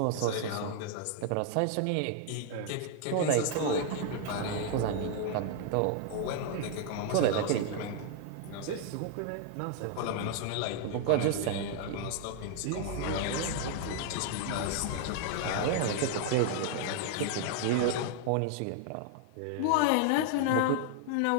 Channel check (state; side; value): different; both; correlation 0.00